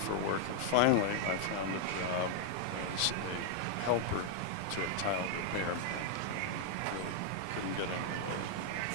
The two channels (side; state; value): both; different; correlation 0.00